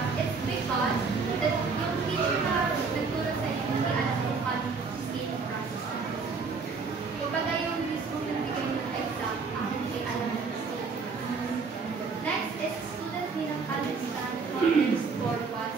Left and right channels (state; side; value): quieter; left; 4.8 dB